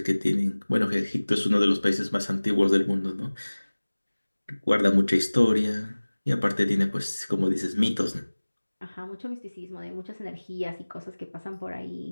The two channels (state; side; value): inverted; both; correlation -1.00